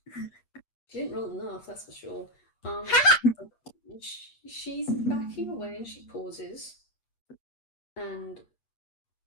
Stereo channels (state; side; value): late; right; 8.4 ms